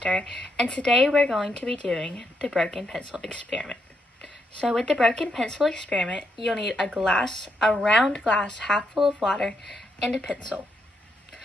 and today we're going to be doing the broken pencil experiment. So with the broken pencil experiment, you'll need a round glass half full of water, and a pencil.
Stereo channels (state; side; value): normal; both; correlation 0.79